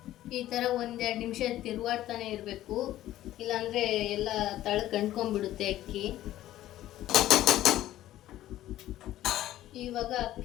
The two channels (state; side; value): quieter; right; 13.9 dB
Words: ಈ ಥರ 1-2 ನಿಮಿಷ ತಿರುವಾಡ್ತಾನೆ ಇರಬೇಕು, ಇಲ್ಲಾಂದರೆ ಎಲ್ಲ ಕಂಡ್ಕೊಂಡ್ಬಿಡುತ್ತೆ ಅಕ್ಕಿ. ಇವಾಗ